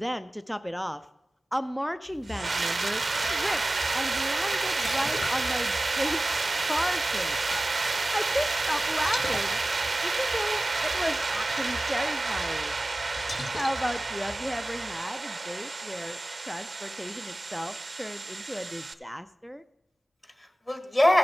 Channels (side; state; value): both; normal; correlation 0.97